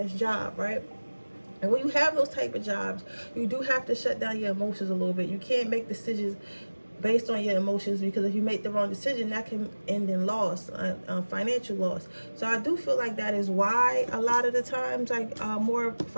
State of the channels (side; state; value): both; inverted; correlation -1.00